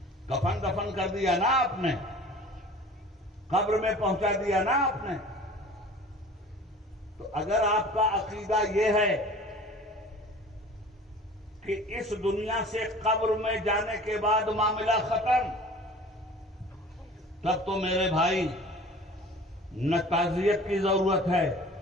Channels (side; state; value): both; normal; correlation 0.44